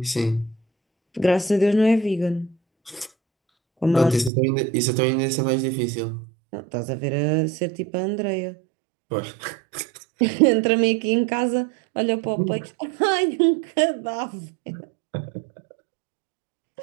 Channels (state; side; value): drops out; left; at 4.3 s